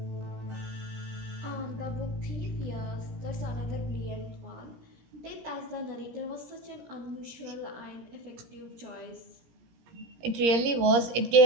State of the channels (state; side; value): late; left; 17 ms